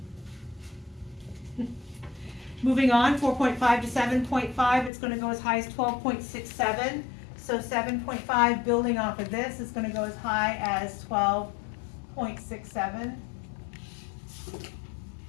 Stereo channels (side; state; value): right; drops out; at 4.9 s